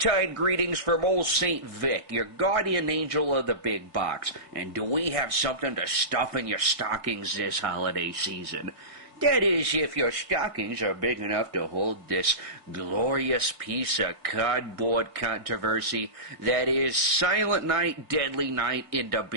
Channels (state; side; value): late; left; 1.6 ms